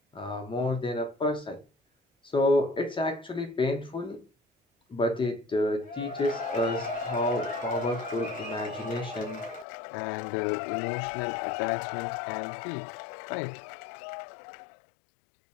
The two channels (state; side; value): drops out; right; at 9.7 s